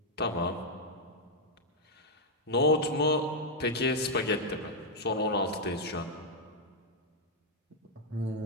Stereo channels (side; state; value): both; normal; correlation -0.02